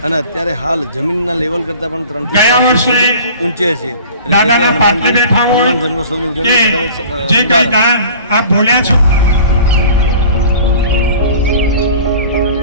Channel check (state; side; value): inverted; both; correlation -0.43